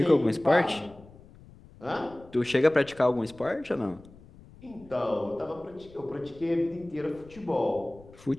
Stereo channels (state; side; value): noise; left; rumble, 22 dB below the sound